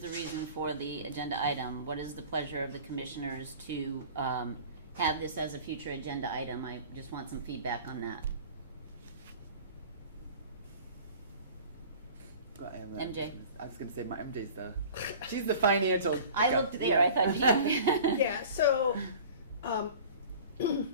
reason for the agenda item. What is the pleasure of the commissioners to have this as a future agenda item? I just want some feedback on that. MJ. I was going to say she's the financial. I looked there. I thought. Yeah. So,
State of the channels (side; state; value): both; inverted; correlation -0.42